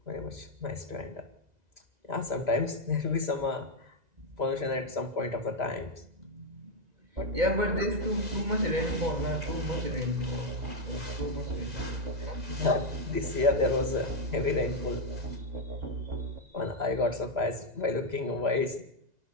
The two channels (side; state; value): left; late; 2.0 ms